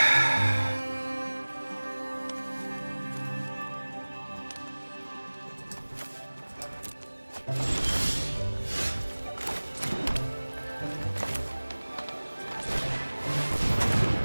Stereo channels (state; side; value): inverted; both; correlation -1.00